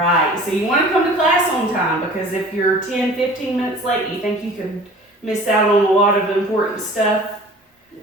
So you want to come to class on time because if you're 10, 15 minutes late, you think you could miss out on a lot of important stuff?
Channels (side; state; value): both; normal; correlation 0.45